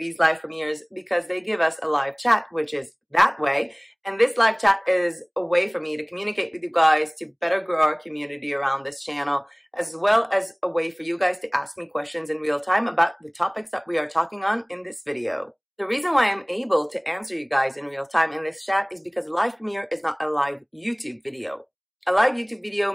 live premieres because they give us a live chat, which is that way. And this live chat is a way for me to communicate with you guys, to better grow our community around this channel, as well as a way for you guys to ask me questions in real time about the topics that we are talking on in this video. The reason why I'm able to answer you guys in real time in this chat is because a live premiere is not a live YouTube video. A live YouTube video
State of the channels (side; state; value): both; identical; correlation 1.00